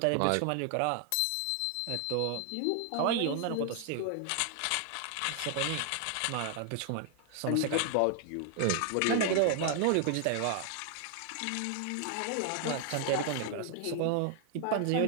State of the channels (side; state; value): both; different; correlation 0.00